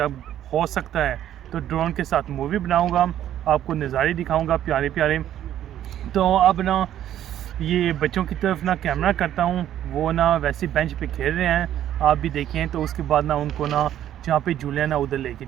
हो सकता है तो ड्रोन के साथ मूवी बनाऊंगा, आपको नज़ारे दिखाऊंगा प्यारे प्यारे। तो अब ना ये बच्चों की तरफ ना कैमरा करता हूँ, वो ना वैसे बेंच पे खेल रहे हैं, आप भी देखें। तो उसके बाद ना उनको ना जहाँ पे झूले हैं ना उधर लेके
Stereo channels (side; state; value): left; quieter; 11.4 dB